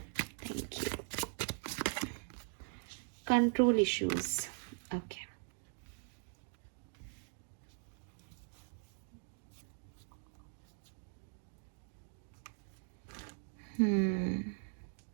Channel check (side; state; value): left; silent; 51 dB below the other